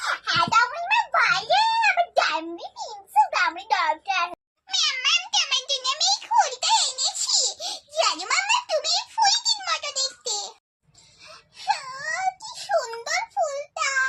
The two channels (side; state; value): both; identical; correlation 1.00